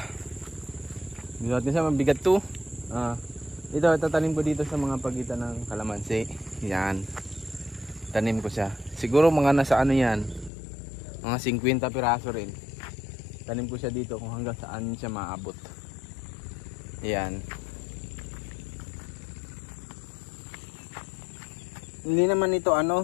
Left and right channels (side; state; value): right; drops out; at 10.5 s